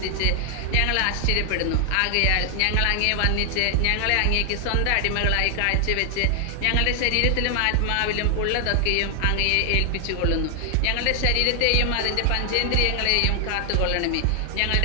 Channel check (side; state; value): both; different; correlation 0.00